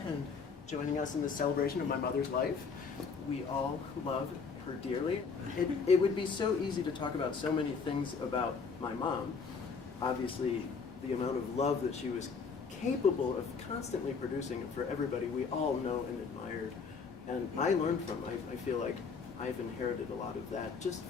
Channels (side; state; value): right; quieter; 5.3 dB